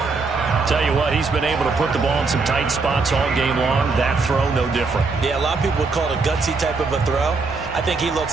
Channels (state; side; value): quieter; left; 4.2 dB